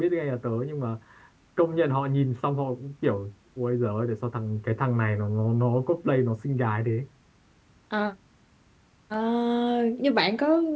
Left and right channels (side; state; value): both; identical; correlation 1.00